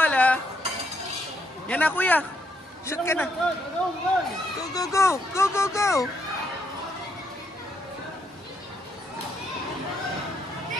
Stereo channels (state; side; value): normal; both; correlation 0.75